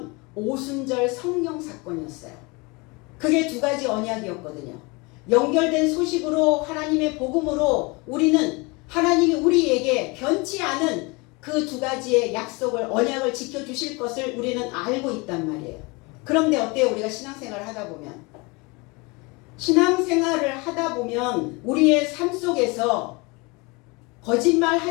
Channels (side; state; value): right; quieter; 27.0 dB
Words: 오순절 성령 사건이었어요. 그게 두 가지 언약이었거든요. 연결된 소식으로, 하나님의 복음으로 우리는 하나님이 우리에게 변치 않은 그 두 가지의 약속을, 언약을 지켜주실 것을 우리는 알고 있단 말이에요. 그런데 어때요? 우리가 신앙생활을 하다 보면. 신앙생활을 하다 보면 우리의 삶 속에서